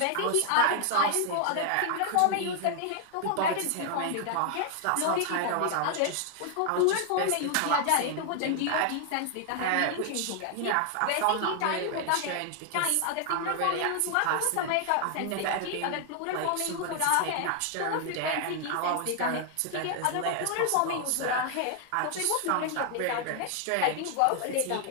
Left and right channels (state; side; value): different; both; correlation 0.00